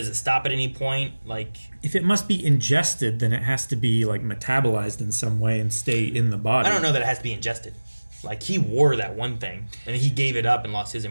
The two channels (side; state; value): both; inverted; correlation -1.00